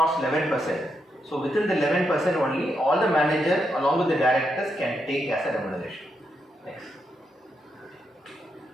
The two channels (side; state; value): both; normal; correlation 0.82